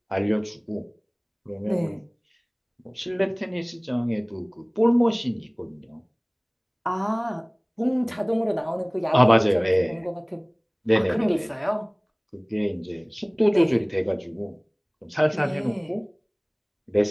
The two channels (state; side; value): identical; both; correlation 1.00